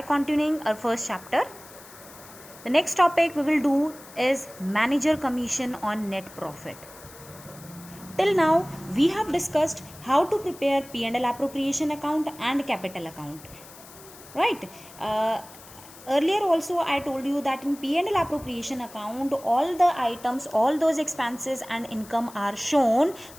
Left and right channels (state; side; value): noise; left; hiss, 19 dB below the sound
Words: continuing our first chapter. The next topic we will do is manager commission on net profit. Till now we have discussed how to prepare P&L appropriation account and capital account, right? Earlier also I told you that in P&L appropriation account all the items, all those expenses and income are shown